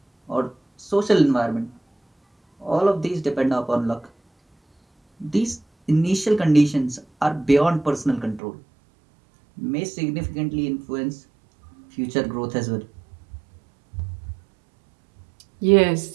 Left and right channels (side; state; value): left; drops out; at 8.4 s